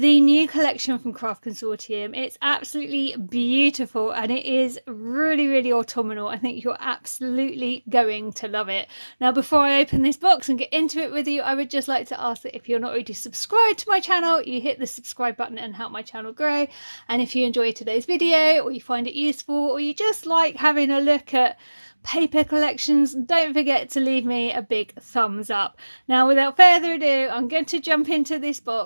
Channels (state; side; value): inverted; both; correlation -1.00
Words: new collection from Craft Consortium. It's absolutely beautiful and it is really, really autumnal. I think you're absolutely going to love it. Now, before I open this box and get into it with you, I would just like to ask that if you're not already subscribed to my channel, you hit the subscribe button and help my channel grow. And if you enjoyed today's video, or you find it useful, or you just like having a look at paper collections, don't forget to leave me a big thumbs up. Now, without further ado, I'm going to jump into this